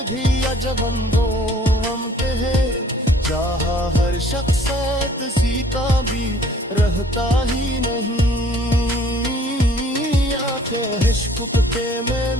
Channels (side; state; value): both; normal; correlation 0.56